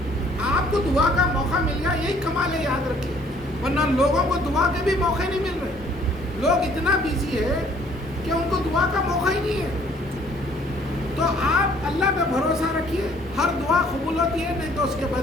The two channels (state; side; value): normal; both; correlation 0.59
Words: آپ کو دعا کا موقع مل گیا, یہی کمال ہے, یاد رکھیے. ورنہ لوگوں کو دعا کے بھی موقع نہیں مل رہے. لوگ اتنا بیزی ہے کہ ان کو دعا کا موقع ہی نہیں ہے. تو آپ اللہ پہ بھروسہ رکھیے, ہر دعا قبول ہوتی ہے, نہیں تو اس کے